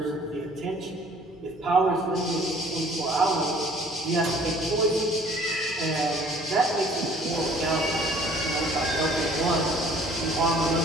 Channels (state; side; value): normal; both; correlation 0.54